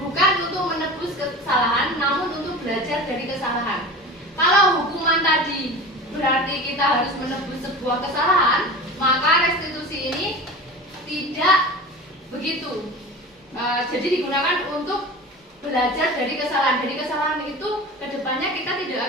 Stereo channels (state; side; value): normal; both; correlation 0.34